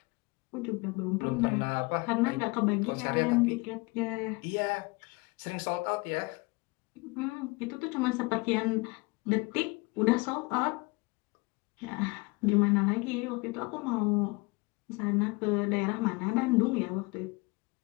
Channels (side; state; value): right; quieter; 26.5 dB